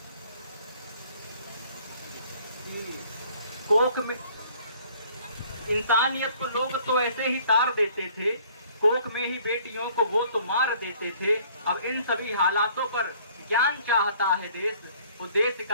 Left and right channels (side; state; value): both; inverted; correlation -0.57